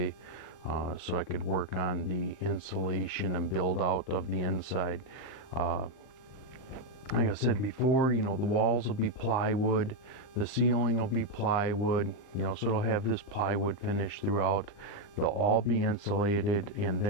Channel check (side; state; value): right; late; 39 ms